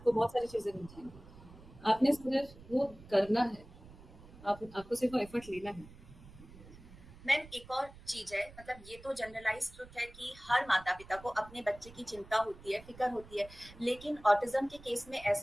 बहुत सारी चीजें मिल जाएंगी। आपने सिर्फ वो करना है, आपको सिर्फ वो एफर्ट लेना है। मैम एक और चीज है, मतलब ये तो जनरलाइज ट्रुथ है कि हर माता पिता को अपने बच्चे की चिंता होती है, फिक्र होती है। लेकिन ऑटिज्म के केस में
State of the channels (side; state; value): right; noise; rumble, 19 dB below the sound